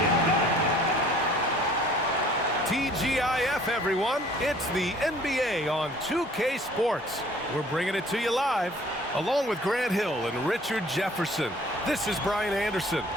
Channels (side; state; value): both; normal; correlation 0.54